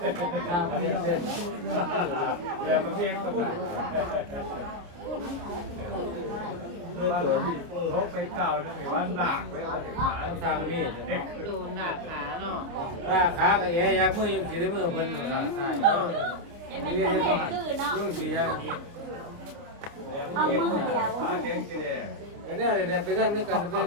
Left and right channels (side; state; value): left; late; 29 ms